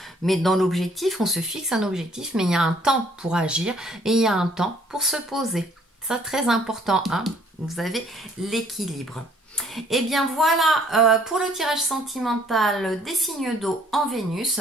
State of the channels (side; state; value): both; normal; correlation 0.61